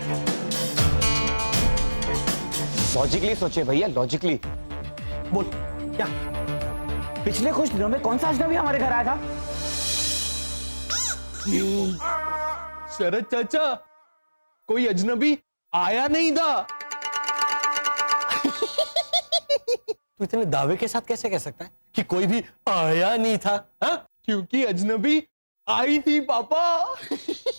लॉजिकली सोचिए भैया, लॉजिकली। बोल क्या? पिछले कुछ दिनों में कौन सा अजनबी हमारे घर आया था? शरद चाचा, कोई अजनबी आया नहीं था। तू इतने दावे के साथ कैसे कह सकता है कि कोई भी आया नहीं था? हा? क्योंकि अजनबी आई थी पापा।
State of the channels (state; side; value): inverted; both; correlation -1.00